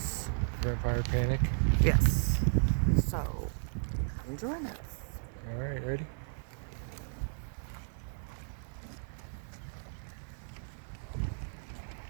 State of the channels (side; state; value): left; silent; digital silence